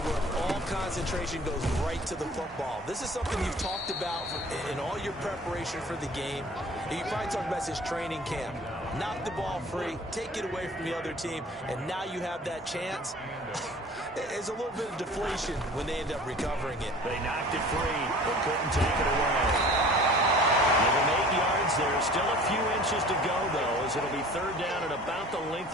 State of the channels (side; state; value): both; normal; correlation 0.46